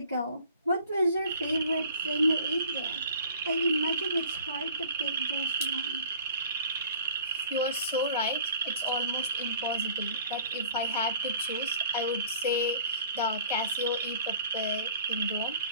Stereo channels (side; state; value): both; inverted; correlation -0.49